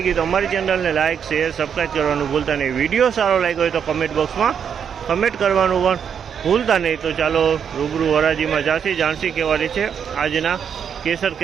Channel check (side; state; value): left; quieter; 7.7 dB